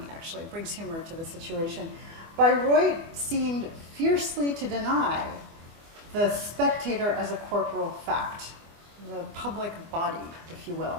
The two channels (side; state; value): left; late; 24 ms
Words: actually. It brings humor to the situation. Bayreuth seemed fiercely to deny the spectator as a corporal fact, the public body, if you